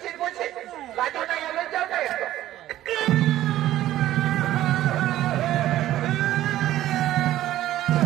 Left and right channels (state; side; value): quieter; left; 13.9 dB